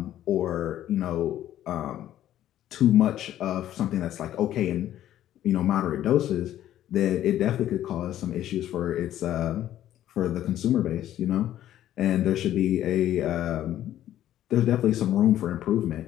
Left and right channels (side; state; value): right; quieter; 12.4 dB